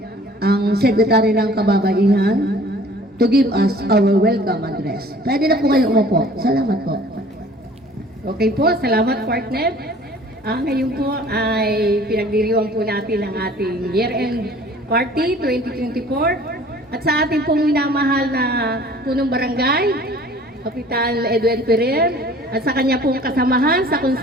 ang Secretary ng Kababaihan, to give us our welcome address. Pwede na po kayo umupo. Salamat po. Okay po, salamat partner. Ngayon po ay pinagdiriwang po natin ang ating Year-End Party 2024 at sa ating pong minamahal na punong barangay, Kapitan Edwin Ferrer, at sa kanya pong kasamahan sa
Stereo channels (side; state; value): both; normal; correlation 0.50